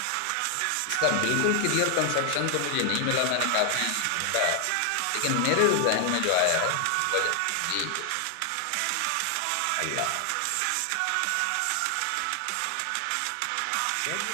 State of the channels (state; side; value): different; both; correlation 0.00